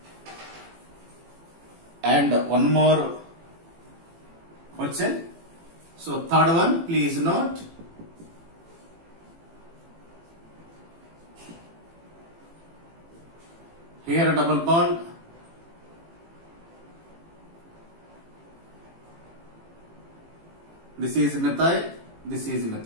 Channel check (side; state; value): left; late; 18 ms